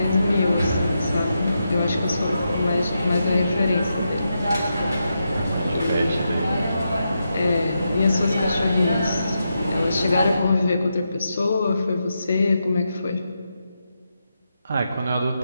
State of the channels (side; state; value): both; inverted; correlation -0.85